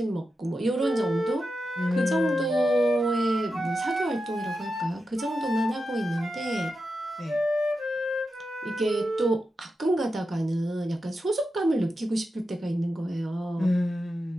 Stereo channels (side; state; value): both; normal; correlation 0.89